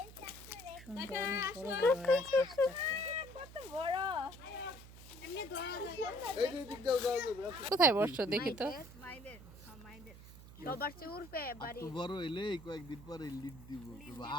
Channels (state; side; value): noise; right; hum, 17 dB below the sound